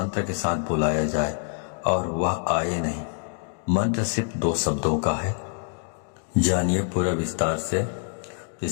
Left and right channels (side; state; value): right; silent; digital silence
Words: के साथ बुलाया जाए और वह आए नहीं? मंत्र सिर्फ 2 शब्दों का है। जानिए पूरा विस्तार से।